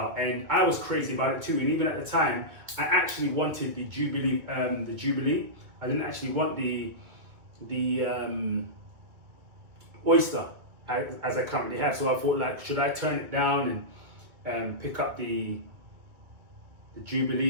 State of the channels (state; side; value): late; left; 2.3 ms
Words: and I was crazy about it too. And even at the time, I actually wanted the Jubilee. I didn't actually want the Oyster as I currently have. So I thought, like, should I turn it down and pick up the